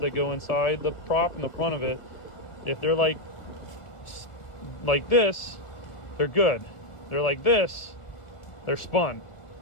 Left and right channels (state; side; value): late; right; 1.7 ms